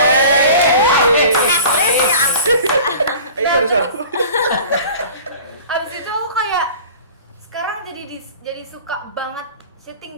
Itu harus apa? Abis itu aku kayak sekarang jadi suka banget syuting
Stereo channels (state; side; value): inverted; both; correlation -0.41